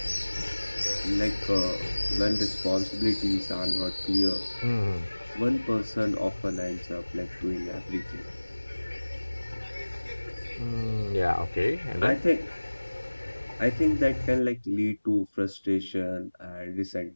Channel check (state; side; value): inverted; both; correlation -1.00